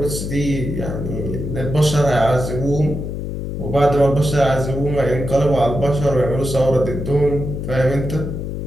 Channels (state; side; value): noise; left; hum, 5 dB below the sound